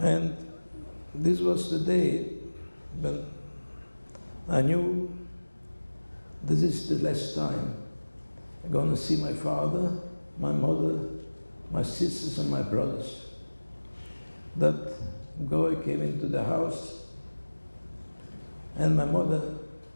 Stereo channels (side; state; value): both; inverted; correlation -1.00